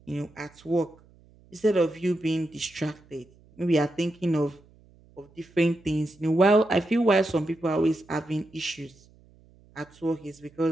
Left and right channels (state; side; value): noise; right; hum, 28 dB below the sound